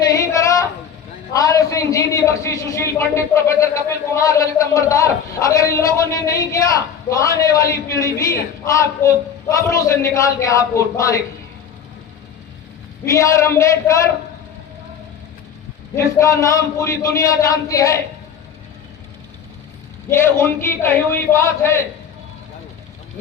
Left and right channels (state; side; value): quieter; right; 7.6 dB